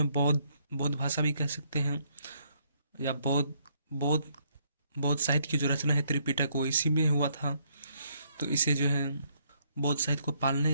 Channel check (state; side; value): inverted; both; correlation -0.71